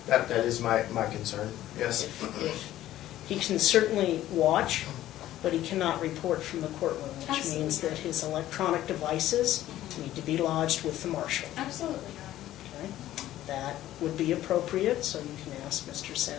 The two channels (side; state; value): right; quieter; 13.8 dB